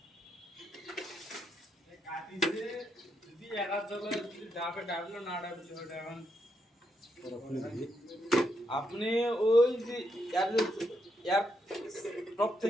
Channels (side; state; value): both; normal; correlation 0.80